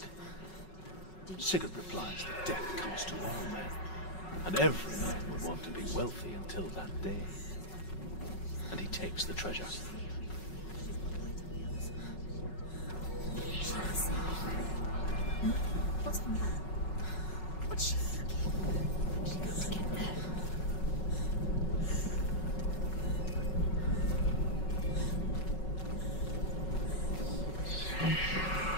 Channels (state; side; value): late; right; 5.4 ms